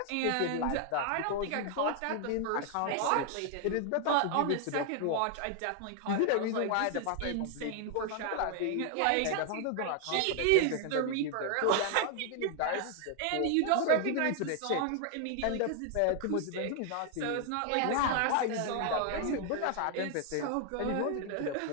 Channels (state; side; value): different; both; correlation 0.00